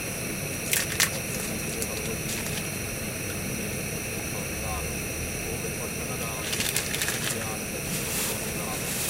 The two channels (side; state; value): both; normal; correlation 0.98